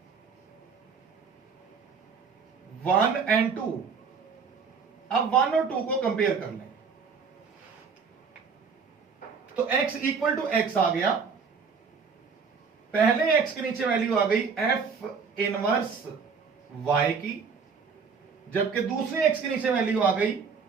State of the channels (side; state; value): left; quieter; 5.6 dB